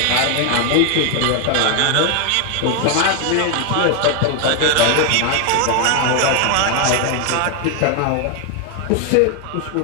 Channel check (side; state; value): both; different; correlation 0.00